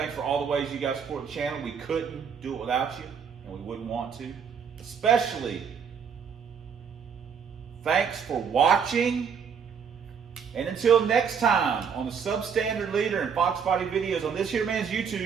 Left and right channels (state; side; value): quieter; left; 6.8 dB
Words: for all the ways you guys support the channel. We couldn't do it without you, and we wouldn't want to. Especially, thanks for watching. And until next time on the Substandard Leader and Fox Body videos on this here man's